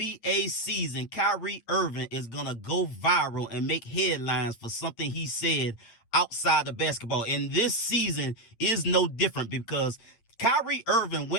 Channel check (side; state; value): right; late; 8.8 ms